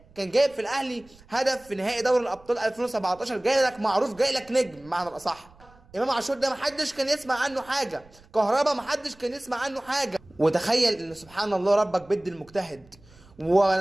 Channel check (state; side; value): noise; right; rumble, 26 dB below the sound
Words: كان جايب في الاهلي هدف في نهائي دوري الابطال 2017، جاي لك معروف، جاي لك نجم بمعنى الاصح. امام عاشور ده محدش كان يسمع عنه حاجه، كهربا محدش كان يسمع عنه حاجه. وتخيل ان سبحان الله ربك بيد المجتهد.